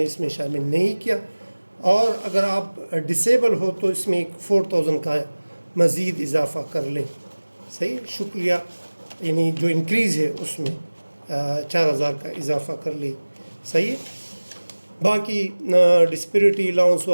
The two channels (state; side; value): inverted; both; correlation -1.00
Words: اس میں شامل نہیں کیا. اور اگر آپ ڈسیبل ہو تو اس میں ایک 4,000 کا مزید اضافہ کر لیں. صحیح، شکریہ، یعنی جو انکریز ہے اس میں 4,000 کا اضافہ کر لیں. صحیح، باقی ڈسپیرٹی الاؤنس